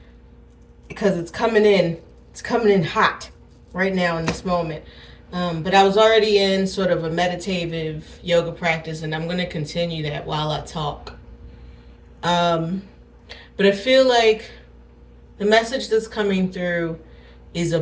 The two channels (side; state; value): both; identical; correlation 1.00